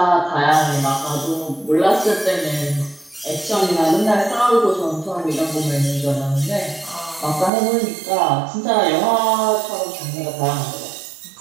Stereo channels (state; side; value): drops out; left; at 7.5 s